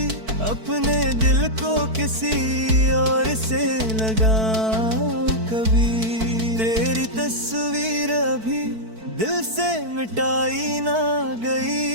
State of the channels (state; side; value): late; left; 4.5 ms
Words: अपने दिल को किसी और से लगाऊं कभी। तेरी तस्वीर अभी दिल से मिटाई ना